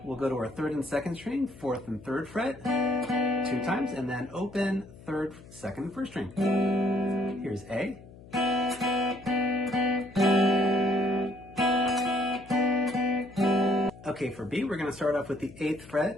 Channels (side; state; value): left; noise; hum, 20 dB below the sound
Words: We'll go to our third and second string, fourth and third fret 2 times, and then open third, second, and first string. Here's A. Okay, for B, we're going to start off with the 8th